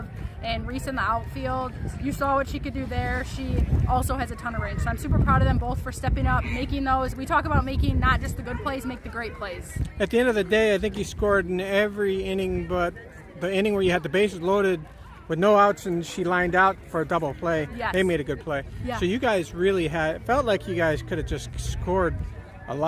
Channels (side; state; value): both; identical; correlation 1.00